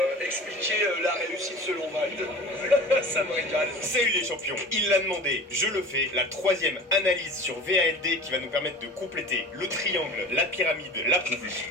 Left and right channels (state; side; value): normal; both; correlation 0.39